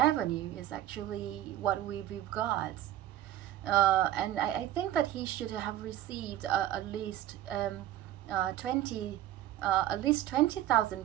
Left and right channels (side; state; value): left; quieter; 12.9 dB